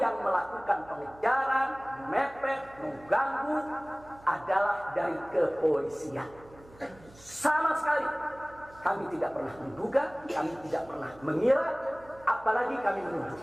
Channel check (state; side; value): noise; right; hum, 23 dB below the sound